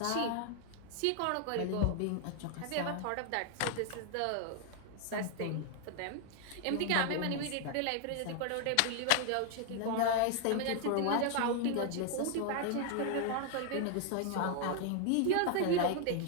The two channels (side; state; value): both; different; correlation 0.00